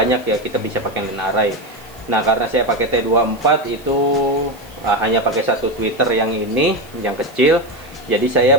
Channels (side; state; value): right; noise; hiss, 25 dB below the sound